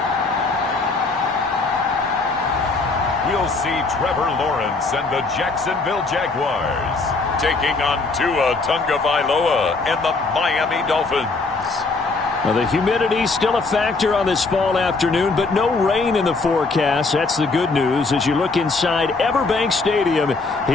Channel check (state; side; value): quieter; right; 3.8 dB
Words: We'll see Trevor Lawrence and the Jacksonville Jaguars taking on Tua Tagovailoa and the Miami Dolphins. Well, the humidity still a factor on this fall afternoon, but no rain in the forecast. That's the good news as you look inside Everbank Stadium